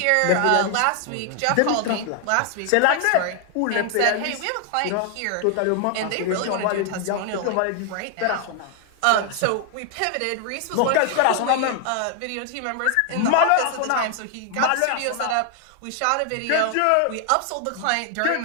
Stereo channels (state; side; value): different; both; correlation 0.00